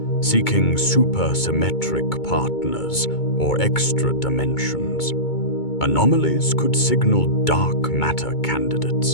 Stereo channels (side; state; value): right; late; 2.2 ms